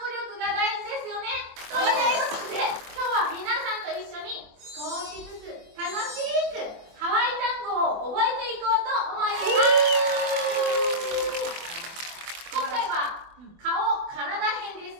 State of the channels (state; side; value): late; left; 24 ms